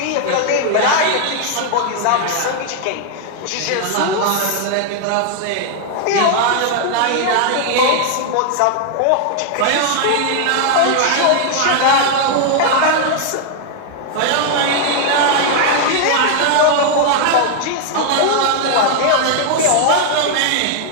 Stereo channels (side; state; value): both; different; correlation 0.00